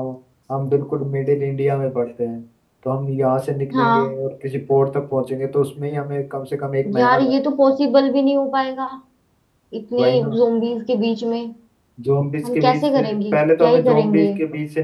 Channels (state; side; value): identical; both; correlation 1.00